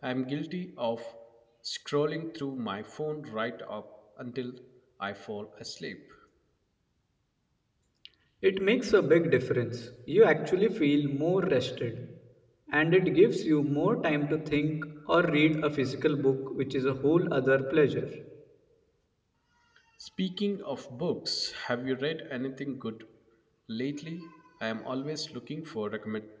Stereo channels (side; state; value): both; identical; correlation 1.00